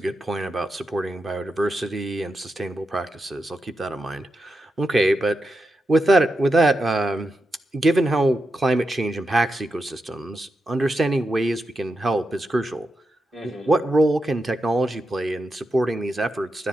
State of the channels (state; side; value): normal; both; correlation 0.87